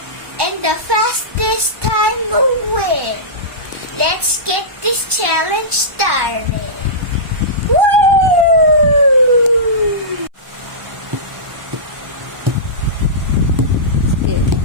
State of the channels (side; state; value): left; late; 1.1 ms